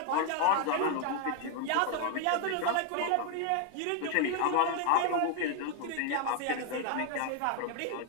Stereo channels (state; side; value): different; both; correlation 0.00